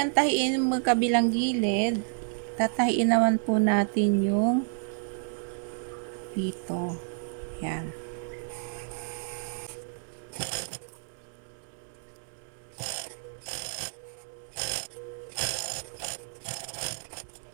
tahiin yung magkabilang gilid, tatahiin naman po natin yung dito. Yan.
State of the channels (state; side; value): silent; left; 58 dB below the other